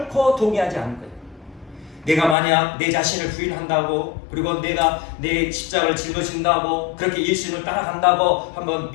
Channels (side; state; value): right; drops out; at 2.4 s